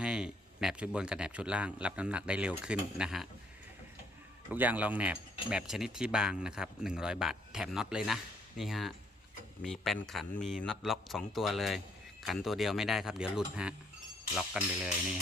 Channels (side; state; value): both; normal; correlation 0.68